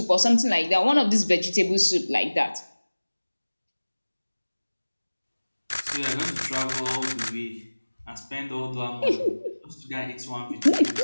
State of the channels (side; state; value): both; inverted; correlation -1.00